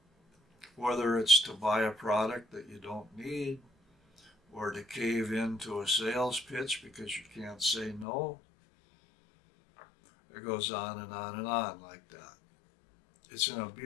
whether it's to buy a product that you don't need, or to cave into a sales pitch because you can't say no. It goes on and on and on like that. It's an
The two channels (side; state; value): right; drops out; at 8.1 s